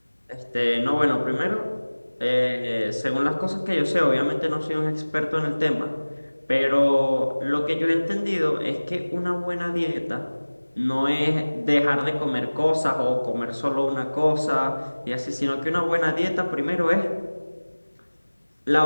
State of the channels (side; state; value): both; inverted; correlation -1.00